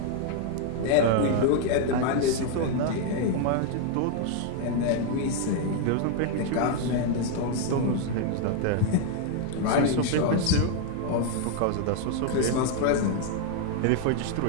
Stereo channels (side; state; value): both; different; correlation 0.00